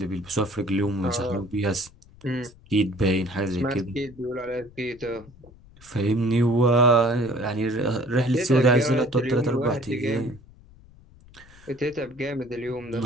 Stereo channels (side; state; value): left; noise; rumble, 24 dB below the sound